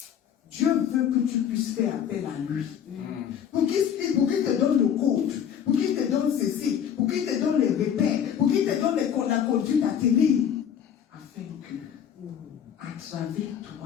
Dieu veut que tu puisses faire appel à lui. Pour qu'il te donne le code, pour qu'il te donne ceci, pour qu'il te donne les repères, pour qu'il te donne la conduite à tenir, afin que, à travers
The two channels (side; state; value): right; quieter; 8.8 dB